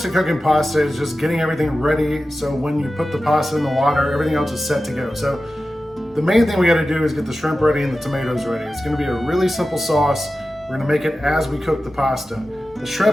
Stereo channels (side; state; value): both; normal; correlation 0.94